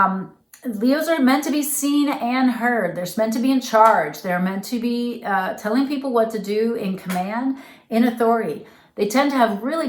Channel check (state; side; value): identical; both; correlation 1.00